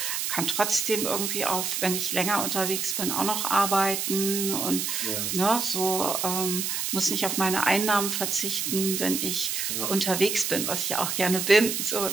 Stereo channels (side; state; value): right; noise; hiss, 1 dB below the sound